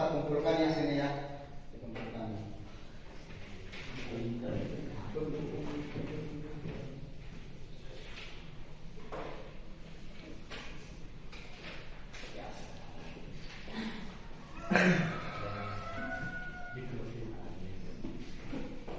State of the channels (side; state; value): both; identical; correlation 1.00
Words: kumpulkan ya sini ya. Dikumpulkan.